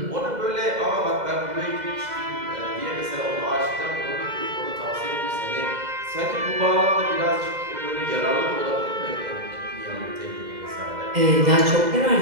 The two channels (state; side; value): late; left; 2.0 ms